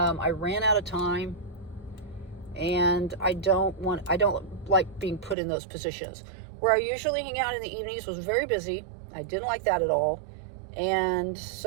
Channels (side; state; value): left; drops out; at 5.4 s